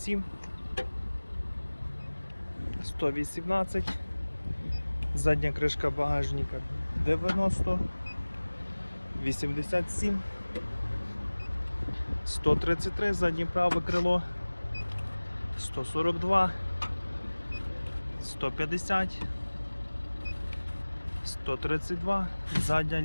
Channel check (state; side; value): inverted; both; correlation -1.00